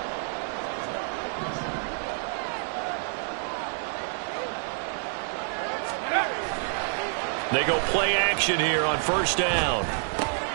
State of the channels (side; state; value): left; silent; 59 dB below the other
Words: They go play action here on first down.